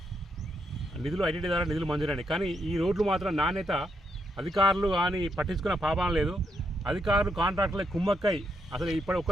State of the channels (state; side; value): normal; both; correlation 0.79